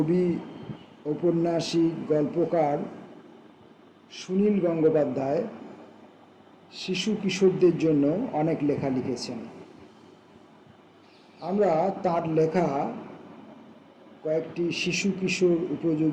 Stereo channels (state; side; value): identical; both; correlation 1.00